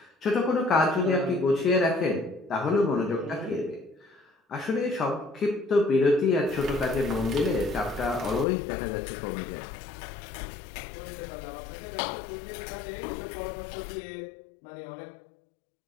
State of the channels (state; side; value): drops out; right; at 8.5 s